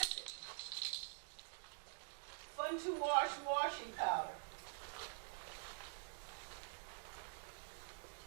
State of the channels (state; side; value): silent; left; digital silence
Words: Fun to wash washing powder.